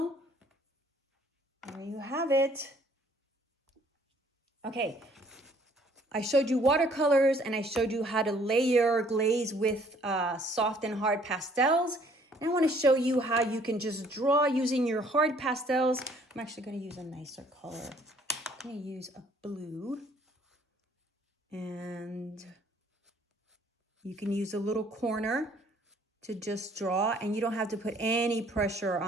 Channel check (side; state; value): both; normal; correlation 0.60